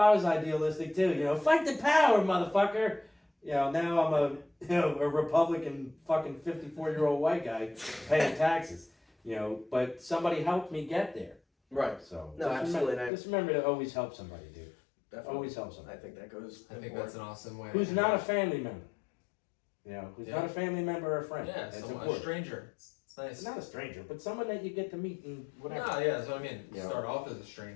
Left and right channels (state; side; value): drops out; right; at 13.1 s